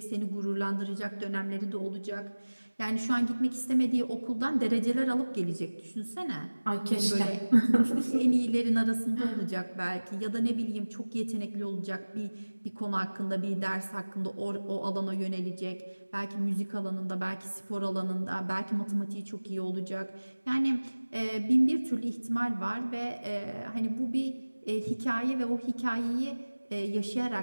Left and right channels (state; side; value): inverted; both; correlation -1.00